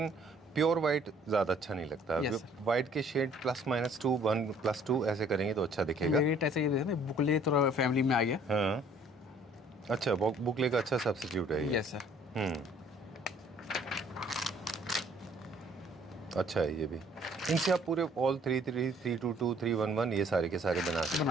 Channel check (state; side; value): normal; both; correlation 0.58